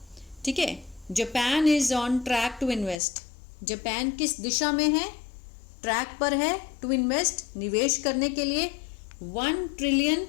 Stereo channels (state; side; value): drops out; right; at 3.0 s